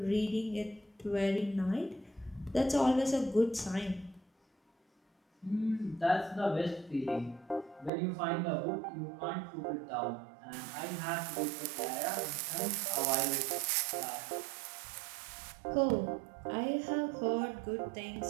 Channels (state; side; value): drops out; left; at 7.9 s